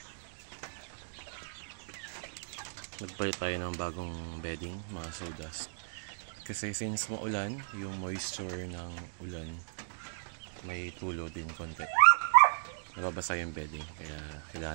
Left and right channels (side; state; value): left; silent; digital silence